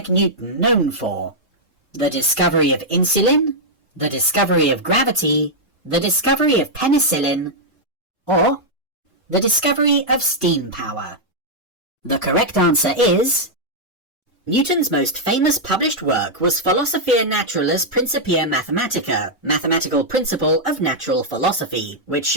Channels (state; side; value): normal; both; correlation -0.05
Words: Newton known for? The discovery of insulin, the discovery of gravity, the discovery of penicillin, or the discovery of steam power? The correct answer is... Newton's most famous published work was Philosophiae Naturalis Principia Mathematica, Mathematical Principle of Natural Philosophy, which